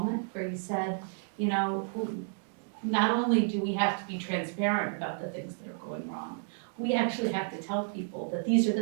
where you said, not only do we have to be transparent about the things that are going wrong, we actually have to tell people that these are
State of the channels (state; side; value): silent; left; 57 dB below the other